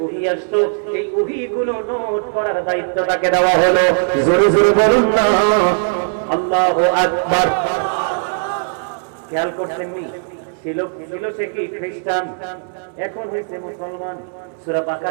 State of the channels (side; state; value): left; silent; 67 dB below the other